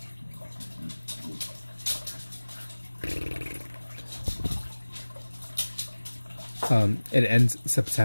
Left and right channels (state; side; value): inverted; both; correlation -1.00